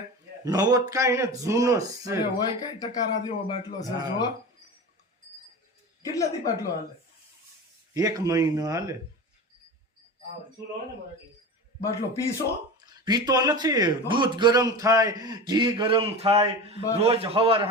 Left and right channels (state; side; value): normal; both; correlation 0.29